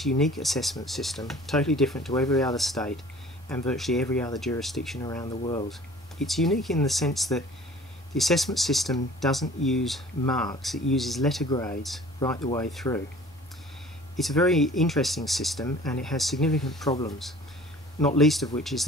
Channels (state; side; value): normal; both; correlation 0.47